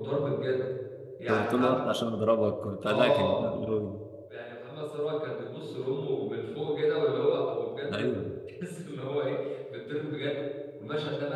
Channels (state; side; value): identical; both; correlation 1.00